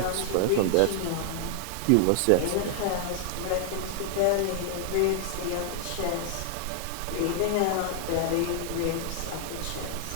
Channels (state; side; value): different; both; correlation 0.00